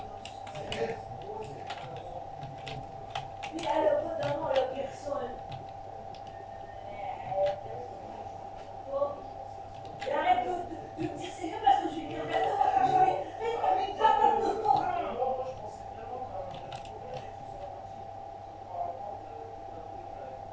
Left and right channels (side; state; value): both; identical; correlation 1.00